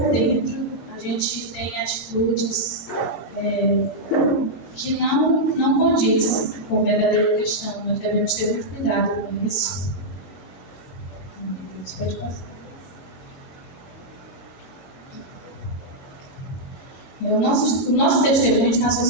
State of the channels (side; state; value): right; late; 22 ms